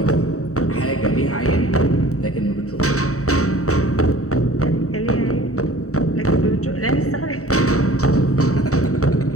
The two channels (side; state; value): right; late; 0.65 ms